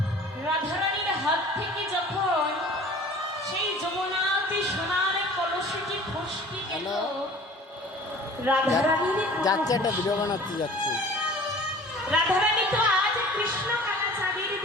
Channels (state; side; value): normal; both; correlation 0.45